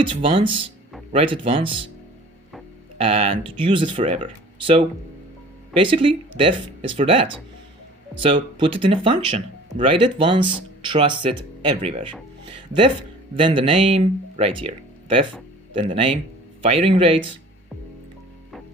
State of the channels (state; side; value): normal; both; correlation 0.47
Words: once, write it once, and use it forever? So basically, def is for that. So put it in a function, write it once, trust it everywhere. Def, then the name, right here. Def, then the name, firing rate,